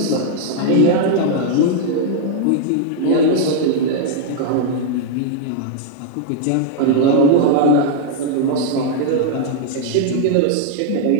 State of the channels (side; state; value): both; different; correlation -0.01